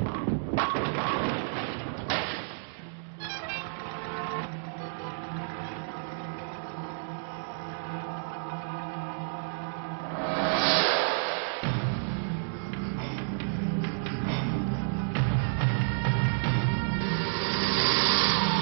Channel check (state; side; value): silent; left; digital silence